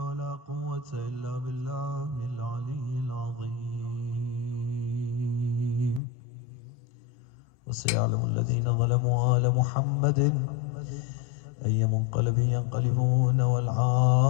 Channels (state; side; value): drops out; right; at 6.0 s